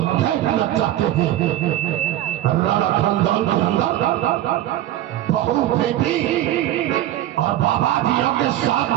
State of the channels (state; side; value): quieter; left; 13.4 dB